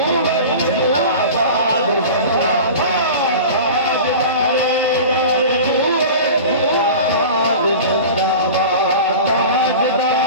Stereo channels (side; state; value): both; inverted; correlation -0.35